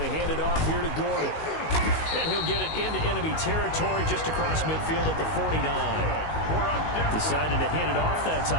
hand it off here to Gordon. And he'll get it into enemy territory just across midfield at the 49. Decided to hand it off that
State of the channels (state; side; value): late; right; 19 ms